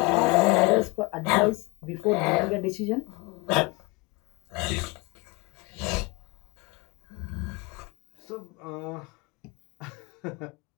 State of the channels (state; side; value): quieter; right; 27.4 dB